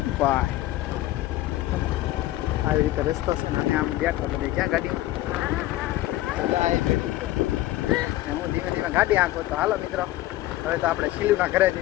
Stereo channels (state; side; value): quieter; right; 15.7 dB